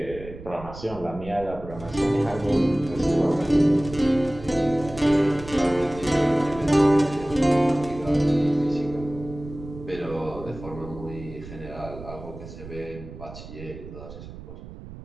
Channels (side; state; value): right; noise; rumble, 14 dB below the sound